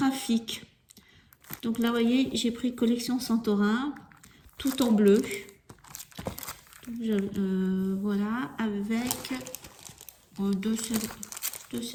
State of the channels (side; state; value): both; identical; correlation 1.00